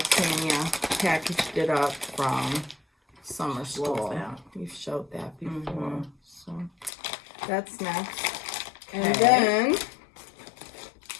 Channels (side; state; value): right; drops out; at 6.9 s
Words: packaged it up from summer school. We've showed that before. So that's next. And then